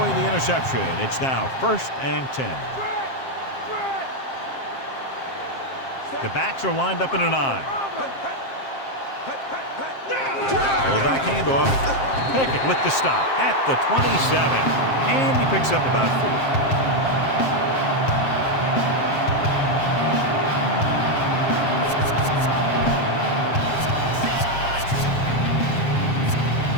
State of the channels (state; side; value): late; right; 7.5 ms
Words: the interception, it's now 1st and 10. The backs are lined up in an I. Fullback handoff. Pickett with the stop at the 27. And he picks up about 4.